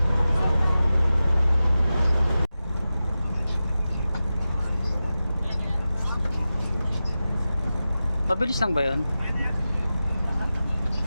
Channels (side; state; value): both; inverted; correlation -0.94